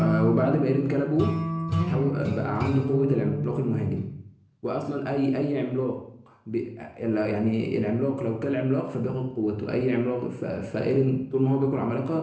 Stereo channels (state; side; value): identical; both; correlation 1.00